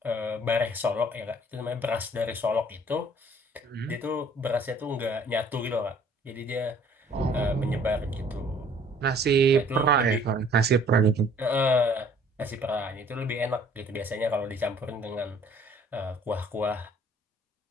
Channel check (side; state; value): both; normal; correlation 0.56